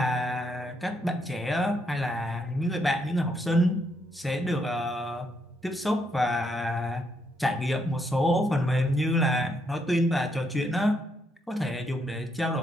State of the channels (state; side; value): normal; both; correlation 0.76